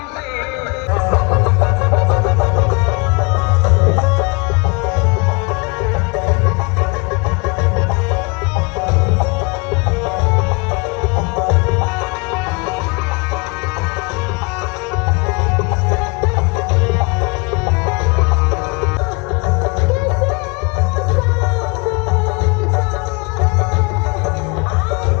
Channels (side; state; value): right; quieter; 29.9 dB